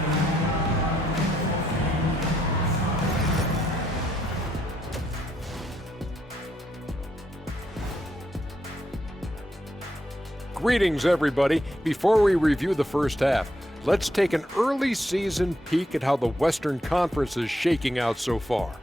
Greetings, everybody. Before we review the first half, let's take an early season peek at how the Western Conference is shaking out so far.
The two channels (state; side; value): normal; both; correlation 0.77